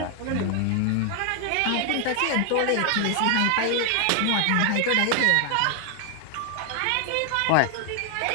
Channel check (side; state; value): both; different; correlation 0.00